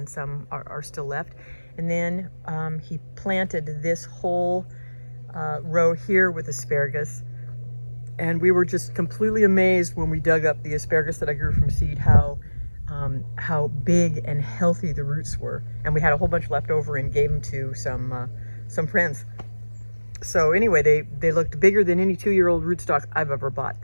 some are still left. And then he planted this whole row here with asparagus. And we were just completely amazed when we dug up the asparagus that I grew from seed, how big and healthy the roots were. And we had a whole bunch left over and gave them to some friends. So anyway, they looked bigger than any 2-year-old rootstock I've ever bought.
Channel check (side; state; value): both; inverted; correlation -1.00